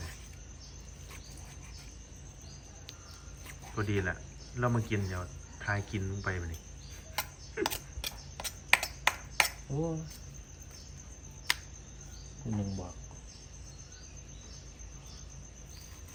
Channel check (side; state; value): both; identical; correlation 1.00